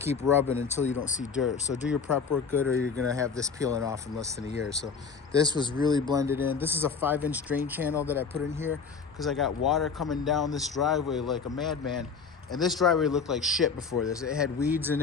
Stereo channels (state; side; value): quieter; right; 5.6 dB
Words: rubbing until you don't see dirt. So do your prep work good, or you're going to have this peeling off in less than a year. So this was really blended in. This is a 5-inch drain channel that I put in here because I got water coming down this driveway like a madman. And this driveway looked like shit before this. It had weeds in